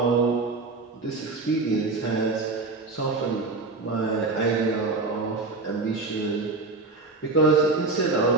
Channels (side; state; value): left; quieter; 3.7 dB